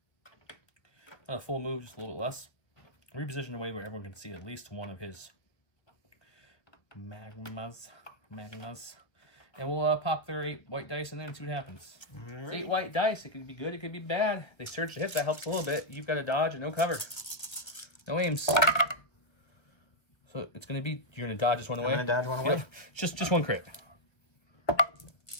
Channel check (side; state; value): right; late; 1.6 ms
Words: Not a full move, just a little bit less. Reposition away where everyone can see at least one of his magmas. And we'll pop their 8 white dice in there and see what happens. It's 8 white dice. It could be good, it could be bad. They surge to hit, that helps a little bit. You've got a dodge and no cover. No aims. So it's going to be, you're going to dodge this one away? I'm going to dodge one away. Yep. Just 1 crit.